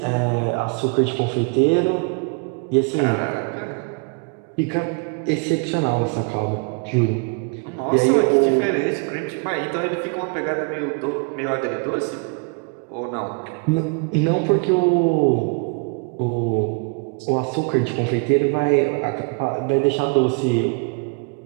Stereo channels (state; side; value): quieter; left; 34.5 dB